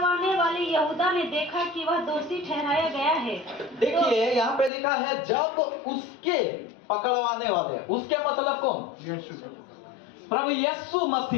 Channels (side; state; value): right; drops out; at 4.7 s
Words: वाले यहूदा ने देखा कि वह दोषी ठहराया गया है। देखिए यहाँ पे लिखा है, जब उसके पकड़वाने वाले, उसके मतलब कौन? प्रभु यीशु